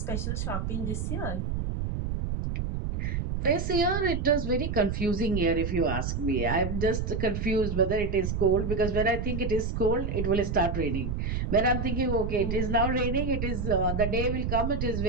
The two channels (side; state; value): right; noise; rumble, 2 dB below the sound